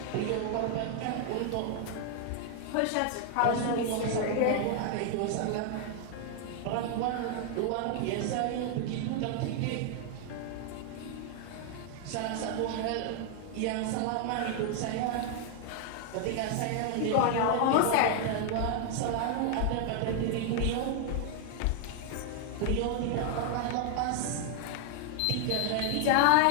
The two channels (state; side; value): different; both; correlation 0.00